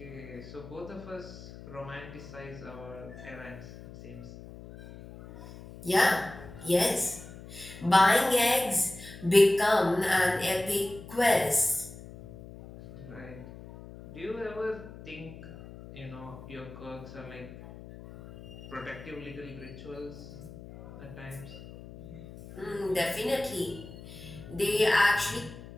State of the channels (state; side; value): noise; left; hum, 15 dB below the sound